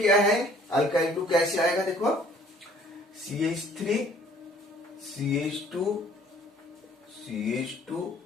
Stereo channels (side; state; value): both; normal; correlation 0.56